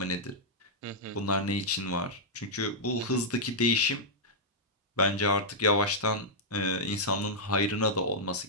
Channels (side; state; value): both; normal; correlation -0.09